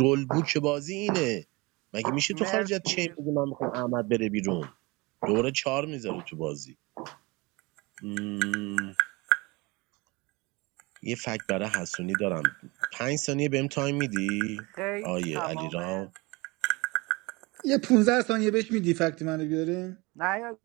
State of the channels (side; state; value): left; quieter; 24.7 dB